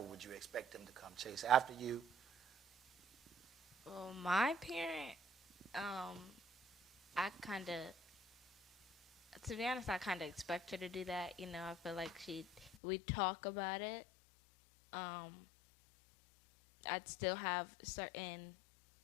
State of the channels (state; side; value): drops out; right; at 12.8 s